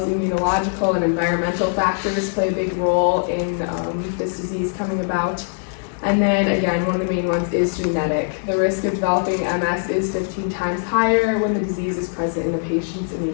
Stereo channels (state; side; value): silent; right; digital silence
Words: as immunological and environmental factors, play a big role in this disease coming about. And then again, one of the main ones is genetic. The risk of developing MS is 15 times higher when the disease is present in the patient's